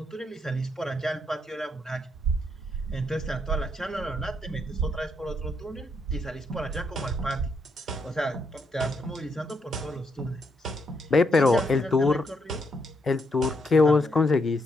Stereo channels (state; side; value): normal; both; correlation 0.77